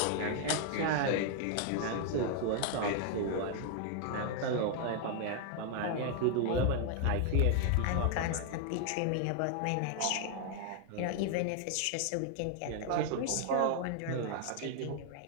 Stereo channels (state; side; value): different; both; correlation 0.00